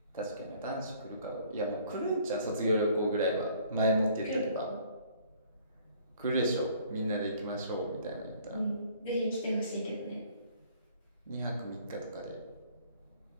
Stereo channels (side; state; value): both; inverted; correlation -0.57